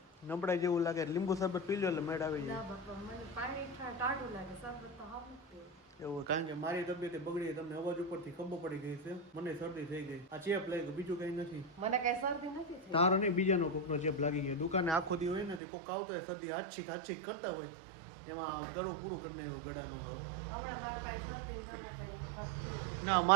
નબળાઈ જેવું લાગે? લીંબુ શરબત પી લો એટલે મેડ આવી ના જાય. બાપા, મને પાણી ટાઢું લાગે, શરબત તો હાવ નથી. એવું? કારણ કે મારી તબિયત બગડી, તમને અવાજ ઉપરથી ખબર પડી ગઈ છે. મને શરદી થઈ ગઈ. આ ચેપ લાગી, બીજું કઈ નથી. મને કઈ શરદી નથી થઈ. તારો નહીં, બીજાનો કોકનો ચેપ લાગી ગયો. દુકાને આખો દી હોય ને કોક આવતો હોય શરદી આછીક કરતા હોય એમાં ગળું પૂરું કરી નાખ્યું ગળાનું. હમણાં મારા પાસે શરદી દવા પડી. ના,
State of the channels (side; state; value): left; drops out; at 15.6 s